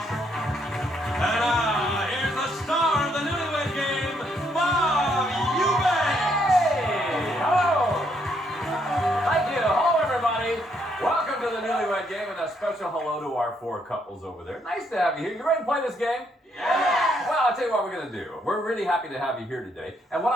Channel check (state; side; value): normal; both; correlation 0.73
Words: And here's the star of the Newlywed Game, Bob Eubanks. Hey, hello. Thank you. Hello, everybody. Welcome to the Newlywed Game, and a special hello to our 4 couples over there. Nice to have you here. You ready to play this game? Yes! Well, I'll tell you what we're going to do. We're really happy to have you here today. And what